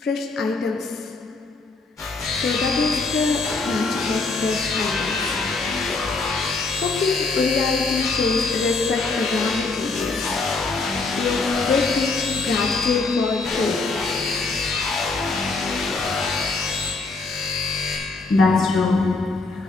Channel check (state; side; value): quieter; right; 3.7 dB